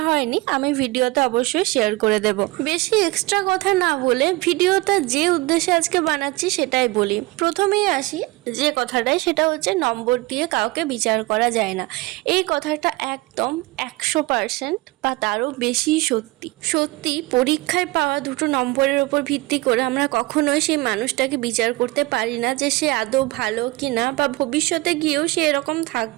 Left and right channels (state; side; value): quieter; left; 21.3 dB